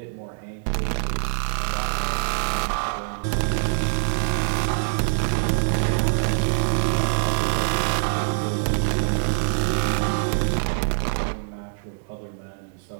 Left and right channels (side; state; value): left; silent; digital silence